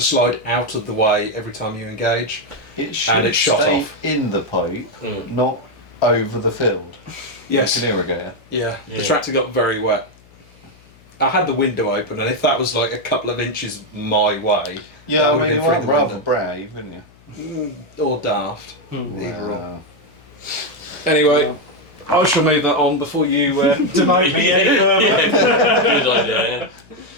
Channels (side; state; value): left; noise; hum, 27 dB below the sound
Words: slide out of the way every time you engage. It should it's shot stay off. in the pipe, Mm. not over the field. Yes. Like an irrigator. Yeah, the Yeah. tractor got very wet. I had the window open, and if that was like a couple of inches my way, Yeah, That I would've mean, been you through are the rather window. brave, isn't you? or daft. Either or. Wow. Anyway, I shall move that on before you demote me any further. Good idea.